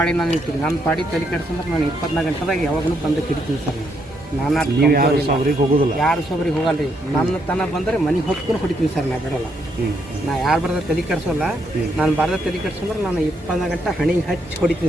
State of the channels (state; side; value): normal; both; correlation 0.75